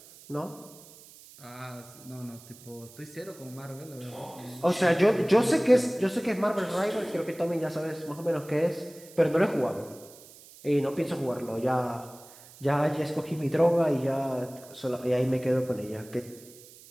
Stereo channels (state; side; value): noise; right; hiss, 21 dB below the sound